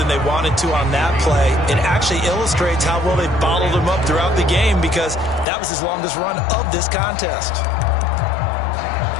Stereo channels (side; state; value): right; drops out; at 5.5 s